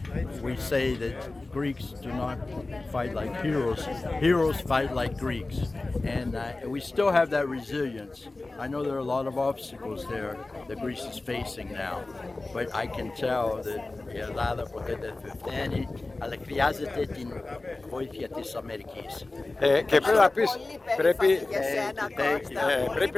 we say that Greeks do not fight like heroes. Heroes fight like Greeks. And we still have that resilience. I know there are a lot of obstacles there that Greece is facing now. But I can tell that η Ελλάδα ποτέ δεν θα φταίνει, αλλά χρειάζεται την βοήθεια της Αμερικής. Και πρέπει να πεις,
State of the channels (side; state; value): right; quieter; 3.2 dB